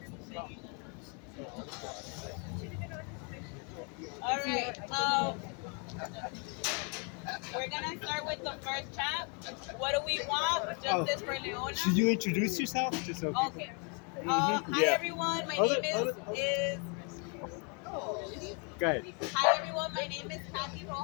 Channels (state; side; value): quieter; right; 35.9 dB